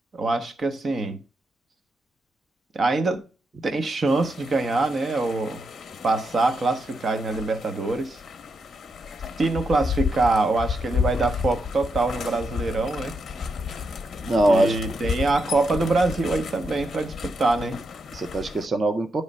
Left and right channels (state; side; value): normal; both; correlation 0.83